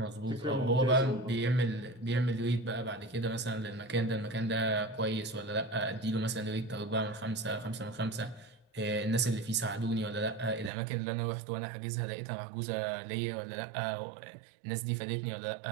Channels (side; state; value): left; drops out; at 10.7 s